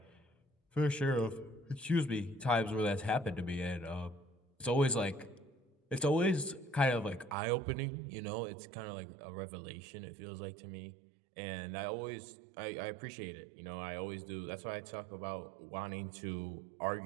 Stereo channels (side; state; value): left; drops out; at 7.4 s